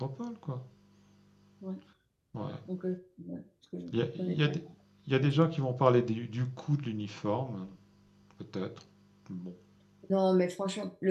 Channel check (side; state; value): both; identical; correlation 1.00